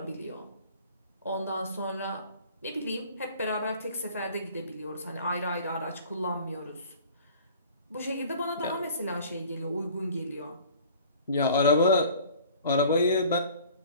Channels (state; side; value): inverted; both; correlation -0.48